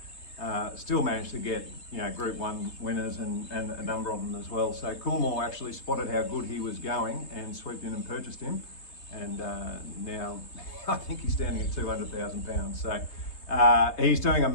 still managed to get Group 1 winners and a number of them as well. So Coolmore actually spotted how good he was going and swooped in and purchased him, and now I think he's standing at £200,000. So he's doing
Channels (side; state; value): right; late; 3.3 ms